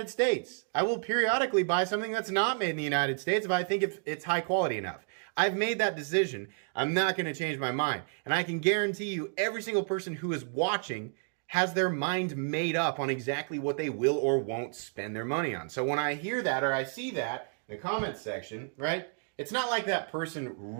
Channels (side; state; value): left; silent; 57 dB below the other